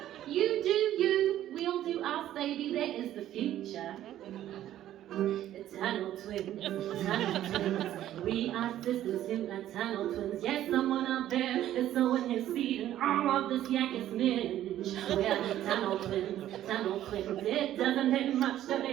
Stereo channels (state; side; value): quieter; left; 12.5 dB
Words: You do you, we'll do us, baby, that is the future. Tunnel twins, tunnel twins. We are sisters who are tunnel twins. Yes, someone out there is sowing his seed in all of this Yakis minge. We're tunnel twins, tunnel twins. It doesn't take much to